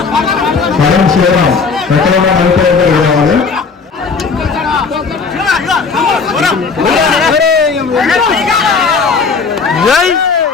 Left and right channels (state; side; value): quieter; right; 5.0 dB